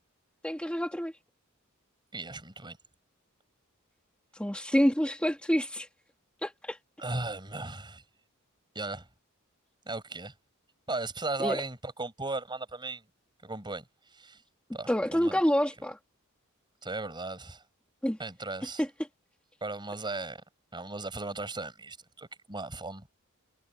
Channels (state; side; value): normal; both; correlation 0.82